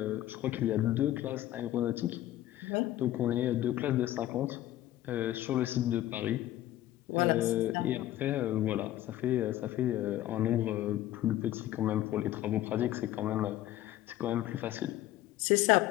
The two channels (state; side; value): quieter; right; 13.9 dB